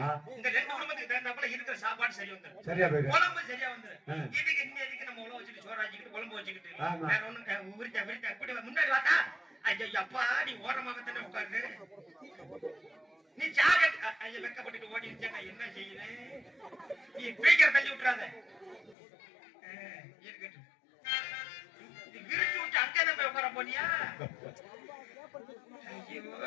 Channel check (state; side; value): drops out; right; at 18.9 s